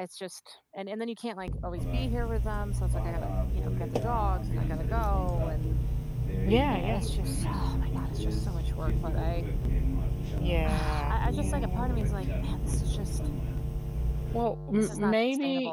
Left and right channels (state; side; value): identical; both; correlation 1.00